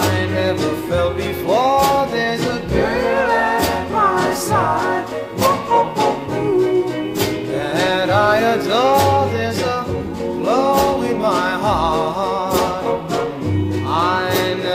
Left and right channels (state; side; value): identical; both; correlation 1.00